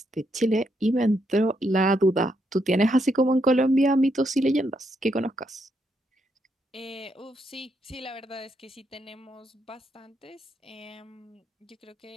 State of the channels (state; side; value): normal; both; correlation 0.78